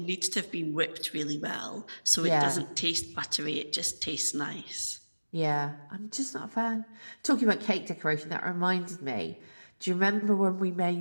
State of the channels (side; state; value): both; inverted; correlation -1.00